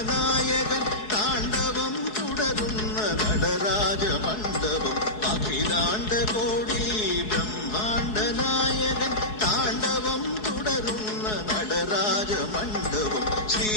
നായകൻ താണ്ഡവം തുടരുന്ന നടരാജമണ്ഡപം അഖിലാണ്ടകോടി ബ്രഹ്മാണ്ട നായകൻ താണ്ഡവം തുടരുന്ന നടരാജമണ്ഡപം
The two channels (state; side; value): late; right; 4.7 ms